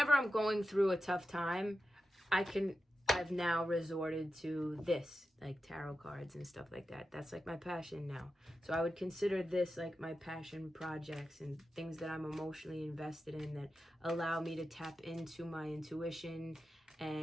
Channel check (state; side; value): normal; both; correlation 0.91